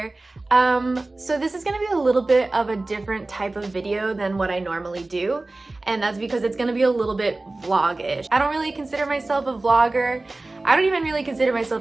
So this is gonna be a little bit of a different type of video than what I normally do, and that's because it's gonna be a little bit vlog-ish. I don't really consider myself a vlogger. I don't even really consider myself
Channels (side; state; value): left; quieter; 3.1 dB